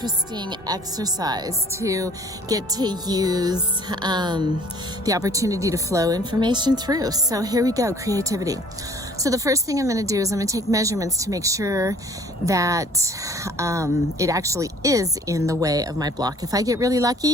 exercise to get to use the opportunity to flow information through. So here we go, creativity. So the first thing I'm going to do is I'm going to take measurements to make sure that it actually is in the way of my block. If I get really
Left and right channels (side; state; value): both; normal; correlation 0.54